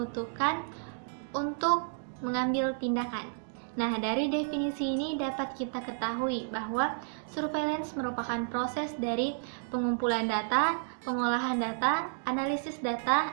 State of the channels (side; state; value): left; silent; digital silence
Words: untuk mengambil tindakan. Nah, dari definisi ini dapat kita ketahui bahwa surveillance merupakan proses dari pengumpulan data, pengolahan data, analisis data,